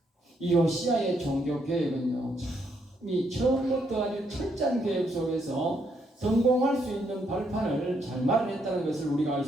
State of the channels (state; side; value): normal; both; correlation 0.74